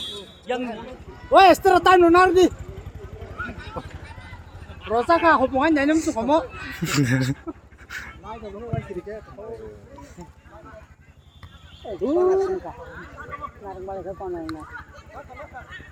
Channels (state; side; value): identical; both; correlation 1.00